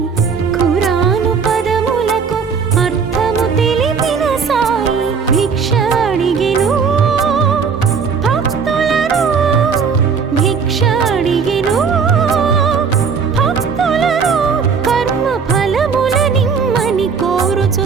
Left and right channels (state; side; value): quieter; left; 5.8 dB